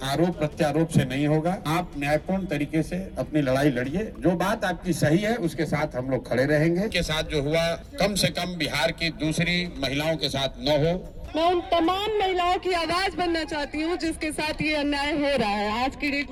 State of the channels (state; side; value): identical; both; correlation 1.00